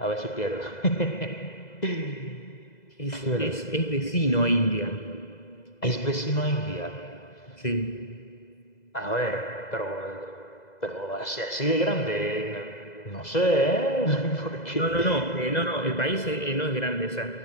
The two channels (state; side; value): late; right; 2.0 ms